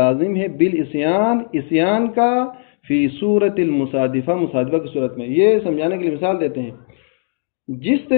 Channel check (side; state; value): right; silent; digital silence